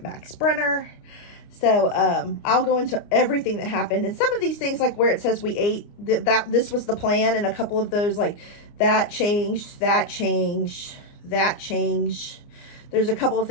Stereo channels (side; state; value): right; late; 29 ms